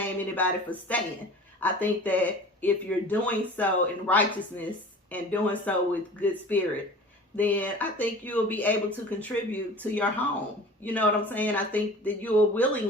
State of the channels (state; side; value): normal; both; correlation 0.41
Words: anybody for staying. I think that if you're doing so in righteousness and doing so with good spirit, then I think you'll be able to contribute to your home. You know what I'm saying? I think that you will